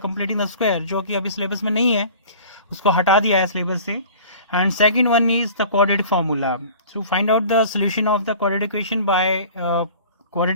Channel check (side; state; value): both; inverted; correlation -0.44